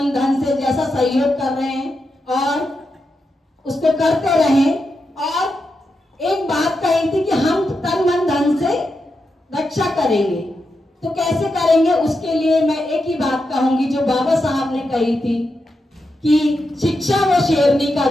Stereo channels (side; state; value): both; normal; correlation 0.87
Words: धन से जैसा सहयोग कर रहे हैं और उसको करते रहें। और एक बात कही थी कि हम तन मन धन से रक्षा करेंगे, तो कैसे करेंगे? उसके लिए मैं एक ही बात कहूंगी जो बाबा साहब ने कही थी कि शिक्षा वो शेरनी का